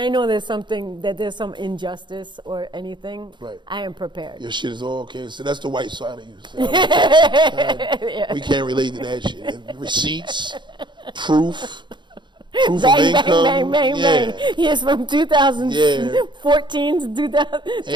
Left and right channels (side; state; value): left; late; 0.22 ms